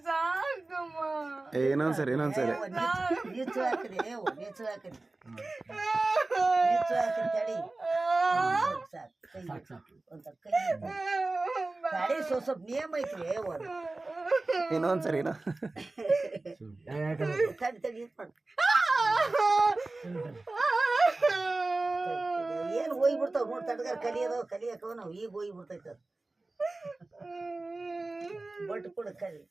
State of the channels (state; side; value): quieter; left; 3.1 dB